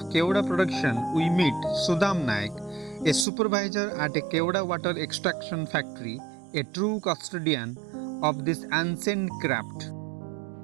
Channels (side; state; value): left; drops out; at 3.2 s